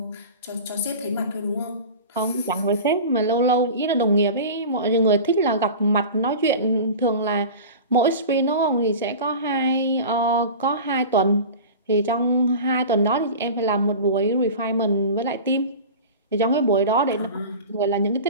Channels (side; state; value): both; inverted; correlation -0.34